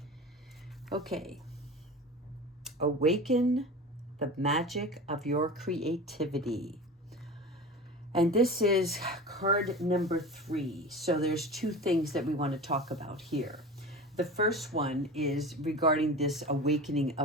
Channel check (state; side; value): normal; both; correlation 0.33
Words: Okay. Awaken the magic of your creativity. And this is card number 3. So there's two things that we want to talk about here. The first one is regarding this awakening